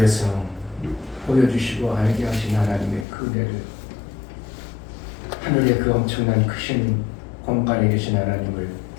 보여주시고 알게 하신 하나님의 그 은혜를, 하늘의 그 엄청난 크신 공간에 계신 하나님을,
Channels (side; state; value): right; drops out; at 3.1 s